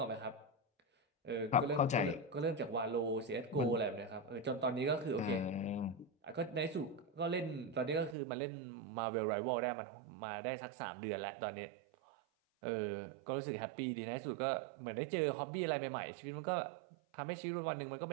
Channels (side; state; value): left; drops out; at 8.2 s